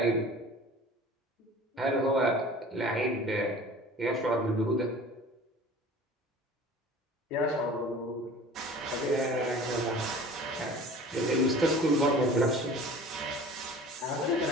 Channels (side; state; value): both; normal; correlation 0.43